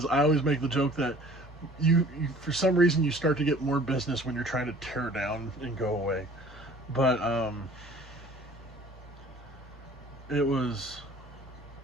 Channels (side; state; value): both; normal; correlation 0.50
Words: I always make the joke that you for some reason you start to get more business when you're trying to tear down and go away. But it was